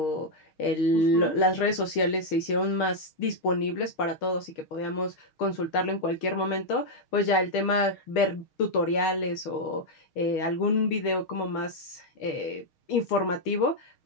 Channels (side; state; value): right; late; 6.4 ms